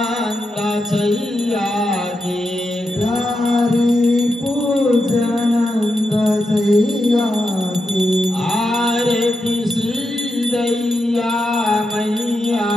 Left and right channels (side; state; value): both; normal; correlation 0.86